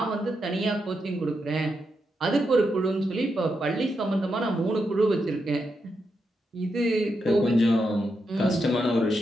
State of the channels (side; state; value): both; normal; correlation 0.84